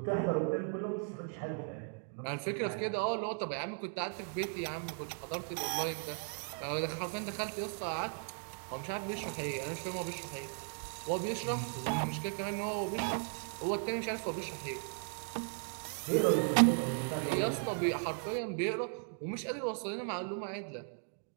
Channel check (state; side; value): silent; left; 53 dB below the other